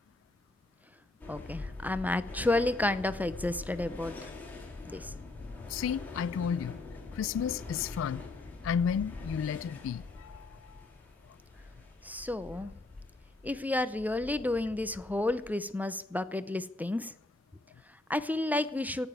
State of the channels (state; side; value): quieter; right; 3.0 dB